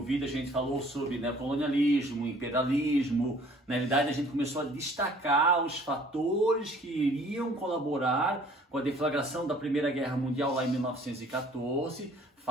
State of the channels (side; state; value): both; normal; correlation 0.55